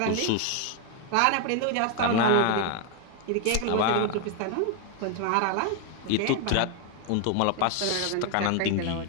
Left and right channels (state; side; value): different; both; correlation 0.00